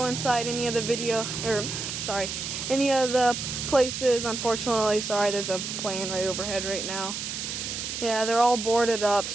inside any of the any of the places, unfortunately. Sorry, there's a plane right overhead right now. Yeah, they're all boarded up,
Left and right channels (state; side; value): noise; right; hiss, 5 dB below the sound